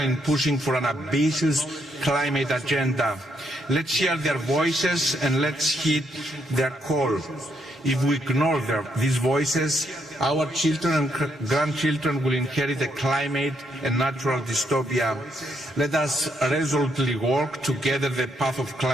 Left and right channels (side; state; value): both; normal; correlation 0.75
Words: pushing for an ambitious climate agenda. Let's hear their voices and let's heed their call. If we ignore these voices, our children and grandchildren will inherit a climate and natural dystopia. Let us resolutely work together the path of